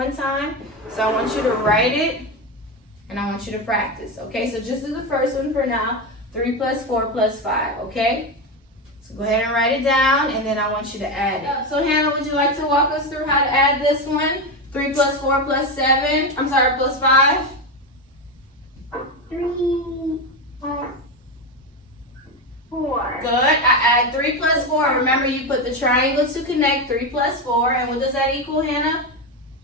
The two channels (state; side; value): normal; both; correlation 0.14